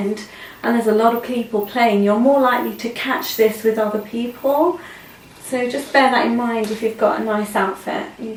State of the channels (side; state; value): both; identical; correlation 1.00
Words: and there's a lot of people playing, you're more likely to catch this with other people. So just bear that in mind if you've got a nice outfit. You